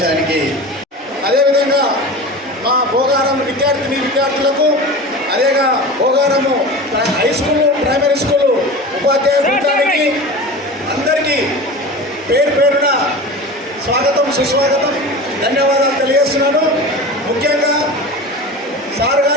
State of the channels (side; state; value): both; normal; correlation 0.32